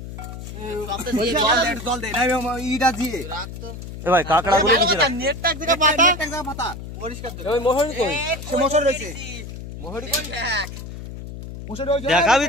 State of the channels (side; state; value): left; noise; hum, 10 dB below the sound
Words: জল দে না ইটা দিয়ে এ ভাই কাকড়া গুলো নিচে রাখ নেটটা এক জায়গা পাতা পরিষ্কার দে ওই মোহরি কই সে মোহর রয়েছে মোহরি কোন দেখ মোহর ওই দেখাবি